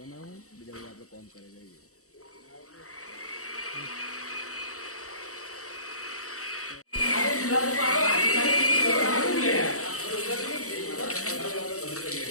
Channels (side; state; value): right; late; 0.65 ms